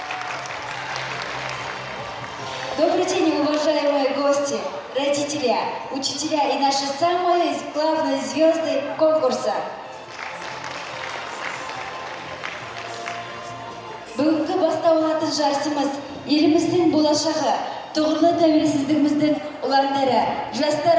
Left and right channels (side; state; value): both; identical; correlation 1.00